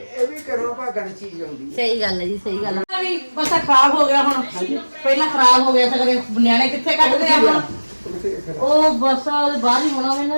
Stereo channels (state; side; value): inverted; both; correlation -1.00